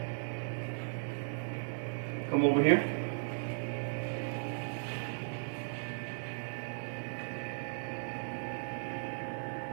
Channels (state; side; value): silent; left; digital silence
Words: Come over here.